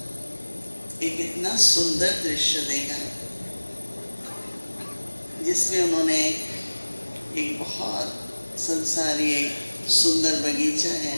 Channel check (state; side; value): inverted; both; correlation -1.00